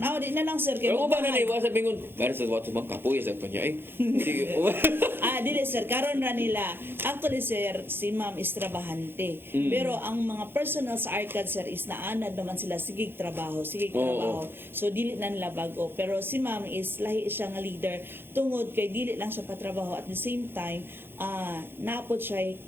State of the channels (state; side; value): late; left; 0.10 ms